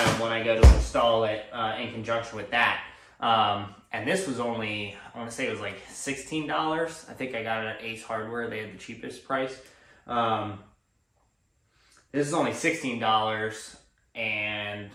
when I go to install it in conjunction with that. And this was only, I want to say it was $16. I think I got it at Ace Hardware. They had the cheapest price. This is only $16, and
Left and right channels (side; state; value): both; identical; correlation 1.00